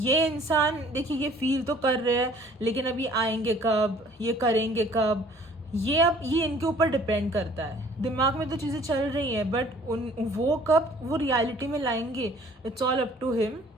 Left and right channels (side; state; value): both; normal; correlation 0.54